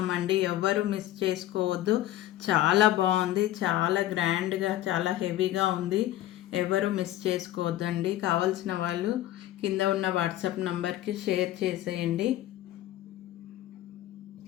ఎవరు మిస్ చేసుకోవద్దు. చాలా బాగుంది, చాలా గ్రాండ్గా, చాలా హెవీగా ఉంది. ఎవరు మిస్ చేసుకోవద్దండి. కావాల్సిన వాళ్ళు కింద ఉన్న వాట్సాప్ నంబర్కి షేర్ చేసేయండి.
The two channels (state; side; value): quieter; right; 13.9 dB